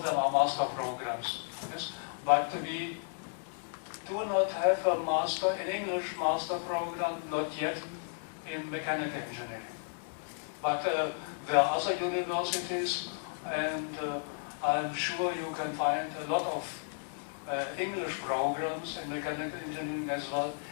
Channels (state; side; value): silent; right; digital silence